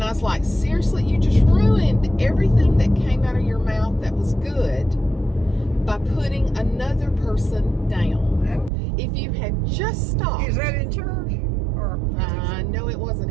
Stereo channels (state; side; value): drops out; left; at 8.7 s